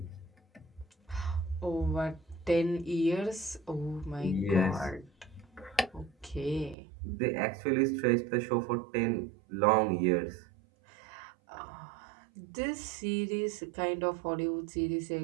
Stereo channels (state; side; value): drops out; left; at 6.8 s